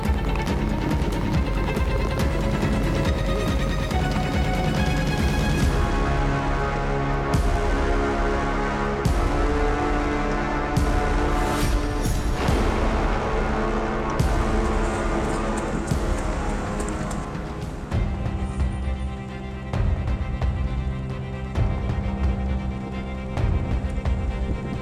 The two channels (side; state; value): both; identical; correlation 1.00